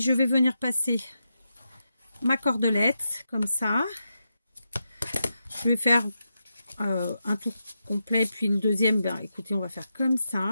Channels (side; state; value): both; inverted; correlation -0.87